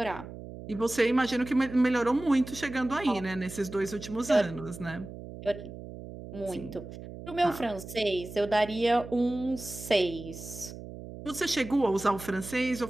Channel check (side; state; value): right; noise; hum, 12 dB below the sound